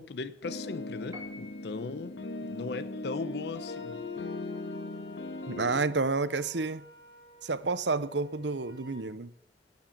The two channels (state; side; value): normal; both; correlation 0.01